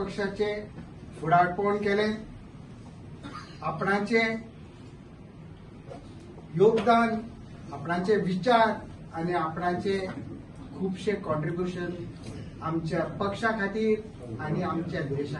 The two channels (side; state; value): both; identical; correlation 1.00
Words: फुडारपण केले. आपणाचे योगदान, आपणाचे विचार आणि आपणाचे खूपशे कॉन्ट्रीब्युशन आमच्या पक्षा खातीर आणि आमच्या देशा